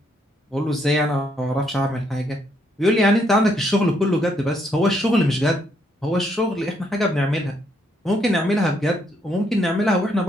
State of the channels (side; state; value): both; normal; correlation 0.73